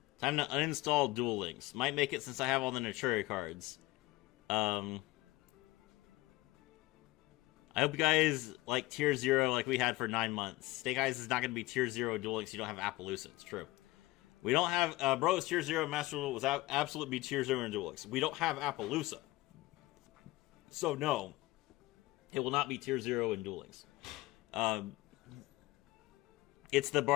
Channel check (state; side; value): quieter; right; 19.7 dB